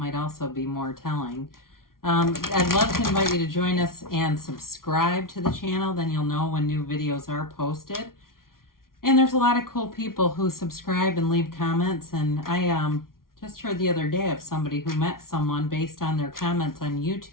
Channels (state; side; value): late; right; 0.92 ms